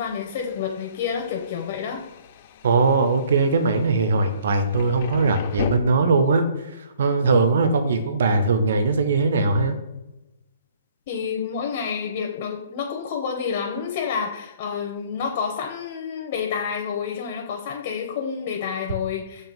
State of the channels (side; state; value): both; inverted; correlation -0.58